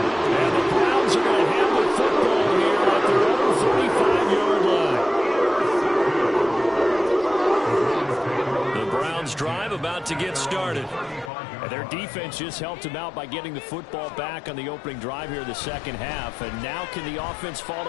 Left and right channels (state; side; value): drops out; right; at 11.3 s